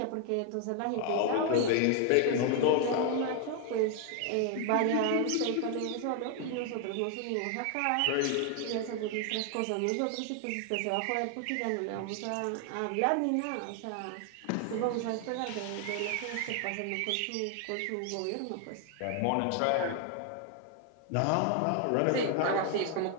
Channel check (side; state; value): both; different; correlation 0.00